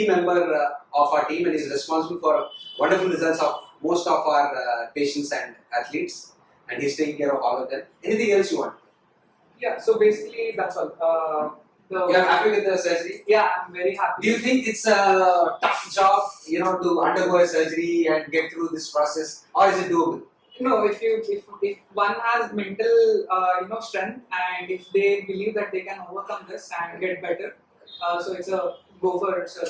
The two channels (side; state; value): both; identical; correlation 1.00